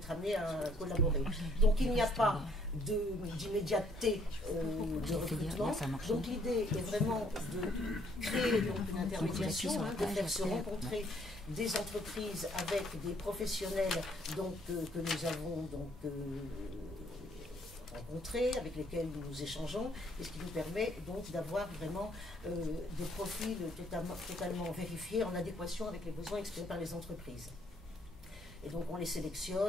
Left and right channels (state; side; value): normal; both; correlation 0.65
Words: amené à collaborer. Donc il n'y a pas d'immédiateté de recrutement. Donc l'idée est vraiment de créer donc, une intermédiation, hein, de faire se rencontrer des entreprises avec des professionnels donc, que nous avons donc, rencontrés, avec lesquels nous échangeons, et ce qui nous permet donc d'avoir vraiment des profils totalement vérifiés en adéquation avec les besoins exprimés par les entreprises. Et donc on les